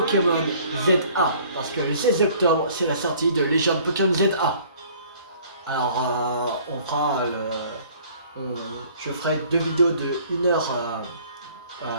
ZA. Parce que le 16 octobre, c'est la sortie de Légende Pokémon ZA. Alors, on fera je ferai 2 vidéos de 1 heure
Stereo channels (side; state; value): both; inverted; correlation -0.54